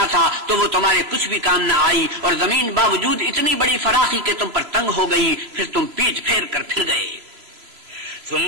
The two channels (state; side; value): late; left; 3.0 ms